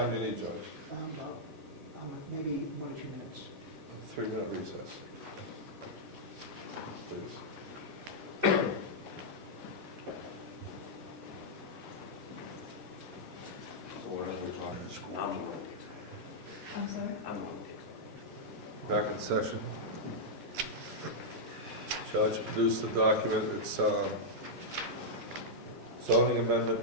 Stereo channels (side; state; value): both; normal; correlation -0.08